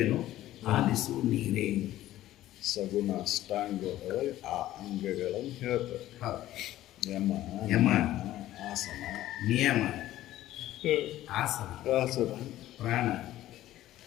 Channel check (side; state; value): right; quieter; 14.3 dB